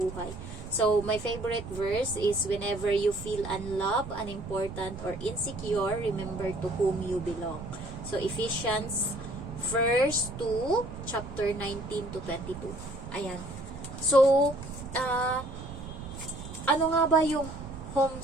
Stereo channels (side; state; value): right; noise; rumble, 11 dB below the sound